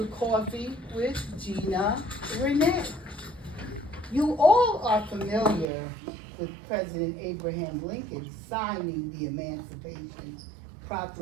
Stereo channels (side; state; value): left; drops out; at 5.7 s